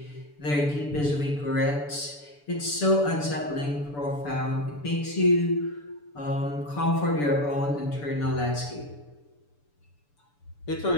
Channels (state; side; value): late; right; 6.9 ms